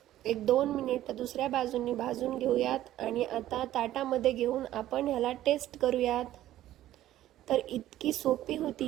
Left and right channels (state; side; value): quieter; left; 13.6 dB